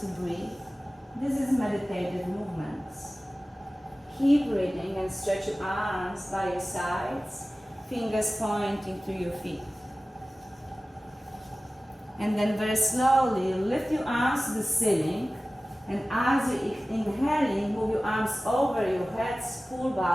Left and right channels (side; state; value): both; normal; correlation 0.97